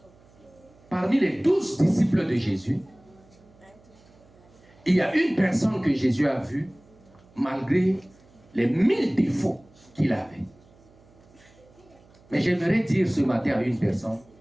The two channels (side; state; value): right; noise; hum, 28 dB below the sound